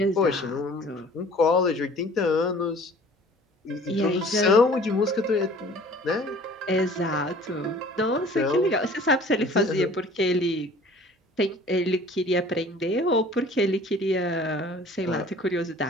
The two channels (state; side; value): normal; both; correlation 0.49